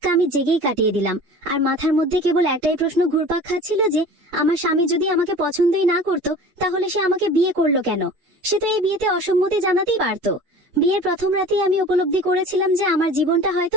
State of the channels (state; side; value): late; left; 8.4 ms